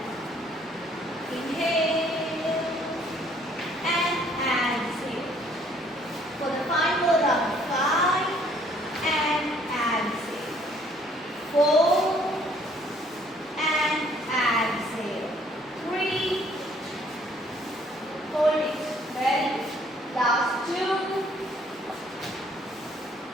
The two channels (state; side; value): normal; both; correlation 0.62